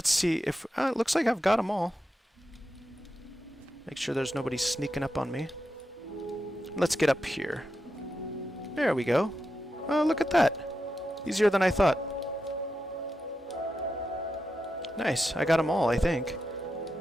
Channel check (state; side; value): normal; both; correlation 0.88